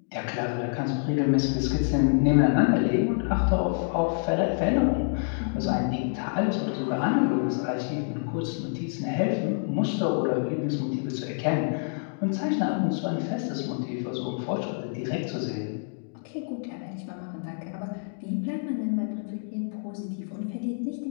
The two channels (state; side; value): silent; right; digital silence